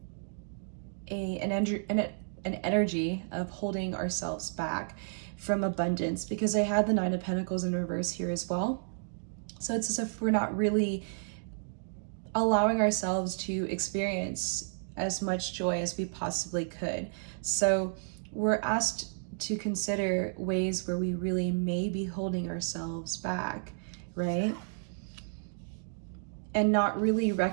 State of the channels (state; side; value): silent; left; digital silence